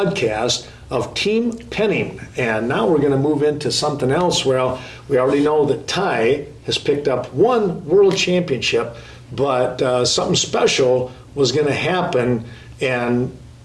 of Team Penning. And now we're going to move into something else. Well, we already know that Ty has picked up one world championship, but something special was going to happen, and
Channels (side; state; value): both; identical; correlation 1.00